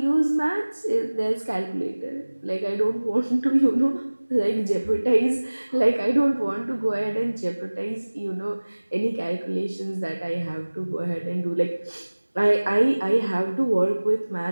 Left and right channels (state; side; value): inverted; both; correlation -1.00